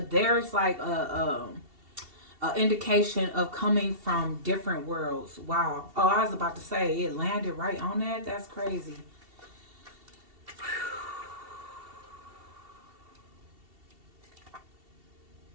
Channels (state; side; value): late; left; 2.7 ms